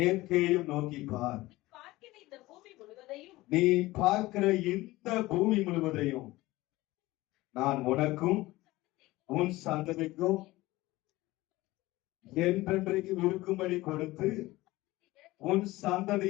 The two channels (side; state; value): right; quieter; 18.9 dB